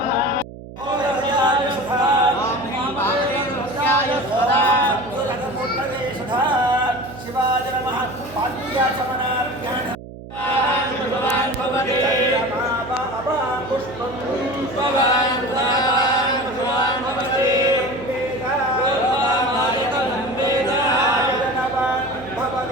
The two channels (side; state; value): right; noise; hum, 14 dB below the sound